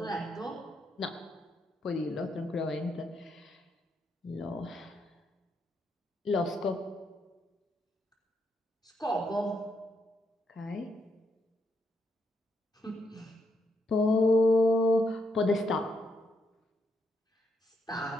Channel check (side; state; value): both; normal; correlation 0.77